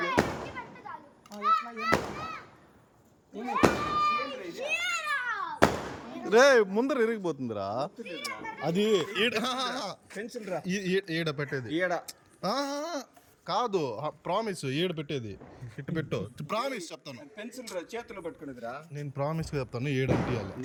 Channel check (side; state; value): both; identical; correlation 1.00